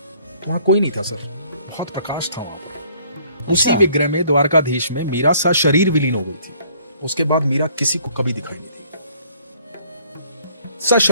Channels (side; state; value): both; inverted; correlation -0.59